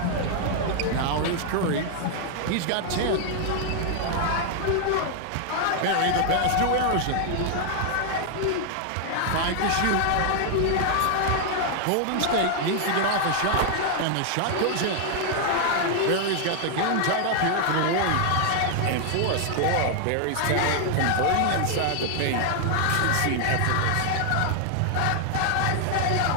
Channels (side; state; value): both; different; correlation 0.00